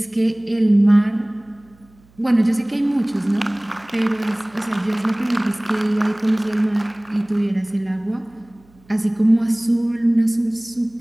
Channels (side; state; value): right; noise; hum, 30 dB below the sound